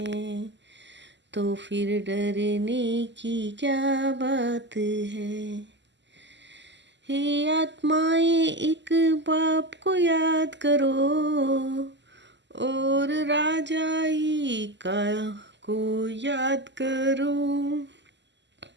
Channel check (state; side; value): late; left; 0.52 ms